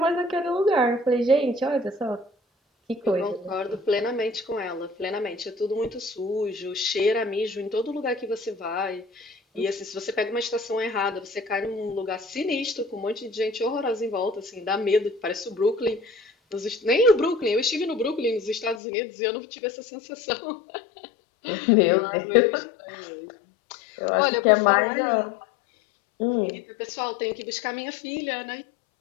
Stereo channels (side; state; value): right; drops out; at 18.8 s